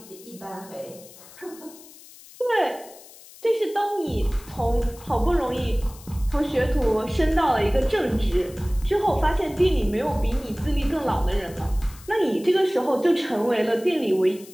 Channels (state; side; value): noise; left; hiss, 20 dB below the sound